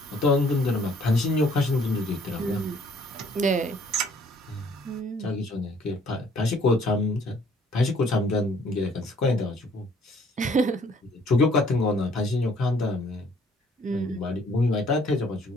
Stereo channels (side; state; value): both; normal; correlation 0.60